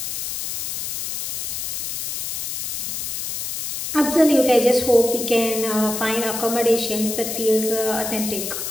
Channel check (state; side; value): noise; left; hiss, 3 dB below the sound